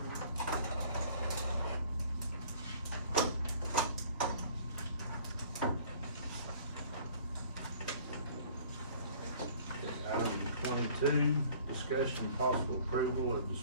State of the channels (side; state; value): both; inverted; correlation -0.52